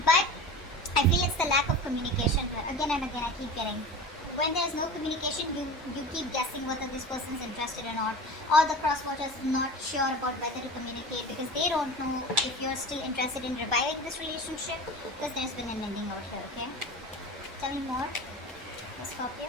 But I feel it's the lack of communication here. Again and again, I keep getting. When there's no communication, you keep guessing whether this person is interested or not. Or the crosswatchers not sure about whether to communicate because they don't know if you're still interested in reviving this relationship because there's been an ending out here, okay? Tell me more, Scorpio.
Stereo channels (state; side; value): normal; both; correlation 0.33